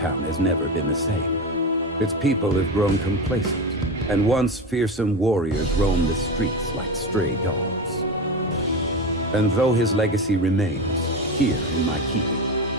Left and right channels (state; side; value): normal; both; correlation 0.21